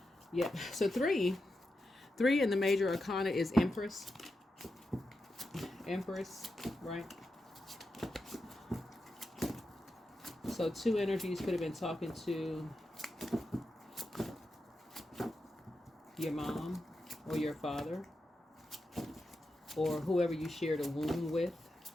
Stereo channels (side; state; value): both; normal; correlation 0.88